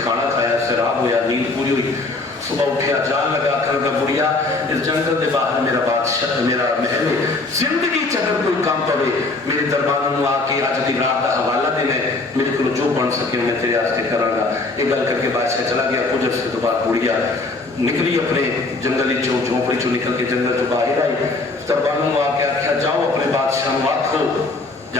کھانا کھایا, سیراب ہویا, نیند پوری ہوئی. صبح اٹھیا, جان لگا آخر کا بڑھیا اس جنگل کے باہر میرا بادشاہ میرا محل ہے. زندگی چگر کوئی کام پوے میرے دربار میں آ کے اج دی رات کا حوالہ دینا ہے, میرے کو جو بن سکے میں تیرے واسطے کراں گا. یہ گل کر کے بادشاہ چلا گیا. کچھ عرصے تو بعد بڑھیا نکلی اپنے جنگلی جھونپڑی چو نکل کے جنگل چ باہر آئی. دربار میں آ کے آخیا جاؤ اپنے بادشاہ کو آکھو,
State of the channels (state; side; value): quieter; right; 3.4 dB